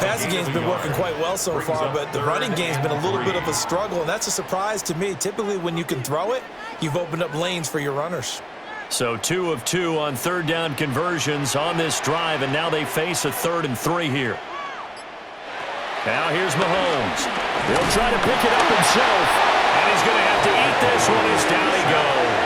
game's been working quite well so far, but the running game's been a little bit of a struggle, and that's a surprise to me. Typically, when you can throw it, you've opened up lanes for your runners. So 2 of 2 on 3rd down conversions on this drive, and now they face a 3rd and 3 here. Now here's Mahomes. He'll try to pick it up himself, and he's going to have to eat this one as down he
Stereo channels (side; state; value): both; identical; correlation 1.00